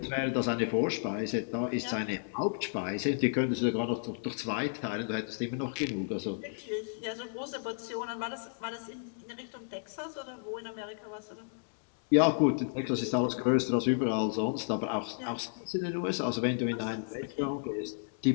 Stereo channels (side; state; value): right; silent; digital silence